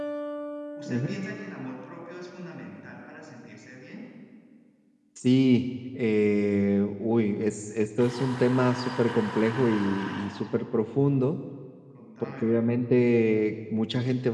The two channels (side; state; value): both; identical; correlation 1.00